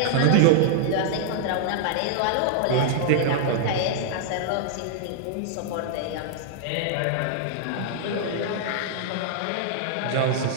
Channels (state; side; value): different; both; correlation -0.01